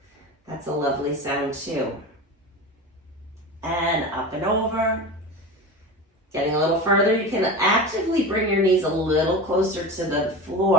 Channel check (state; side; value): normal; both; correlation 0.28